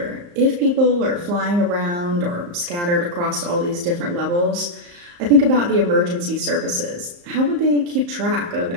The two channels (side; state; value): left; late; 34 ms